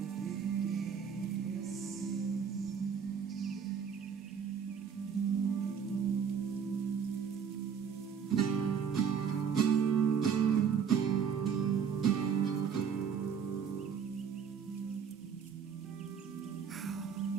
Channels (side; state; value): left; quieter; 7.1 dB